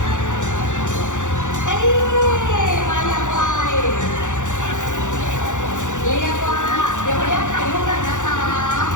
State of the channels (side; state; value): right; late; 0.85 ms